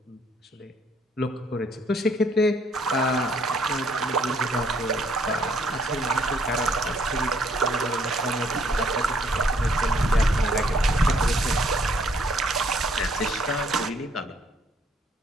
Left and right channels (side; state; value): both; normal; correlation 0.66